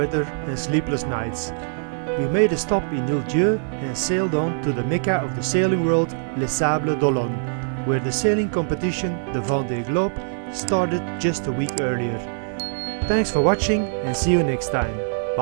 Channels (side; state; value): left; silent; 63 dB below the other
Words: and sleepless nights. We made a stop in Île-Dieu and sailed on to the Mecca of the sailing world, Les Sables d'Olonne, where the sailing competition, the Vendée Globe, started just a week earlier. Thanks for watching and see you next time.